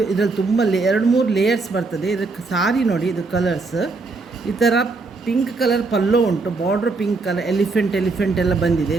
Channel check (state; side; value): quieter; left; 3.8 dB